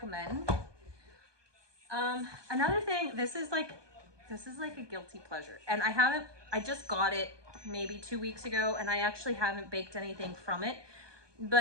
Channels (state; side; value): late; left; 1.2 ms